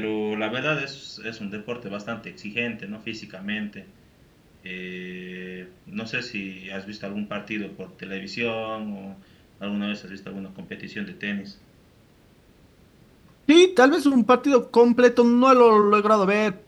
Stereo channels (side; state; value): both; identical; correlation 1.00